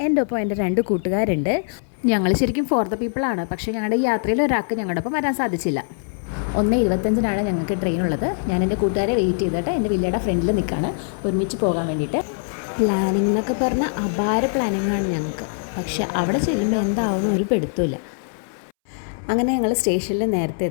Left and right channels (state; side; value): silent; right; 64 dB below the other